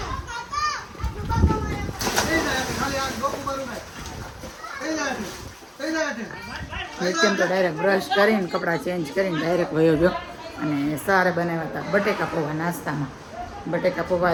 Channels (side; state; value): both; identical; correlation 1.00